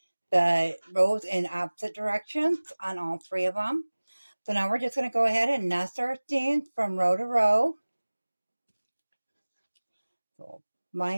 the rows in opposite directions on all 3 of them. So now we're just going to go ahead and nest our seams from row to row. So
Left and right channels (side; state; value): both; inverted; correlation -1.00